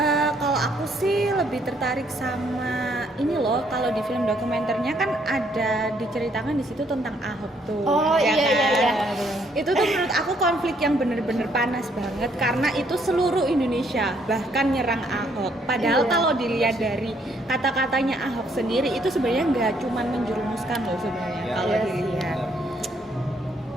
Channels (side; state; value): both; normal; correlation 0.69